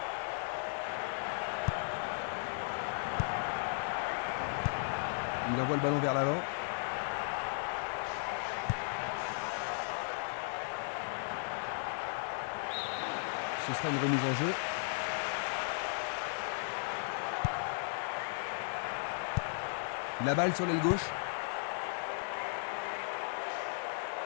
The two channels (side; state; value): right; silent; digital silence